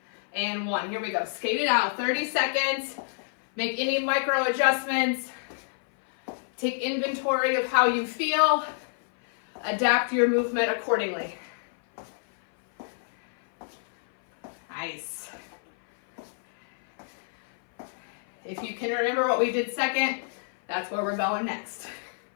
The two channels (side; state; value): right; silent; 57 dB below the other